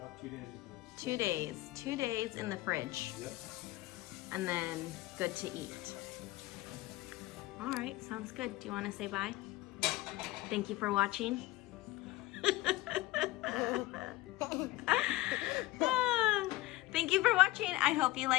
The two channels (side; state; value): right; quieter; 18.5 dB